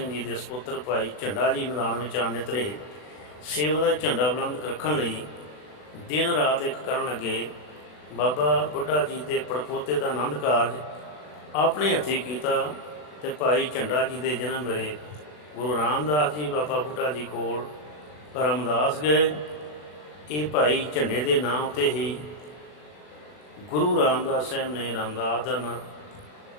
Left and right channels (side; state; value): right; late; 40 ms